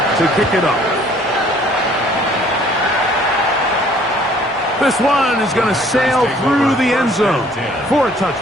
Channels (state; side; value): normal; both; correlation 0.57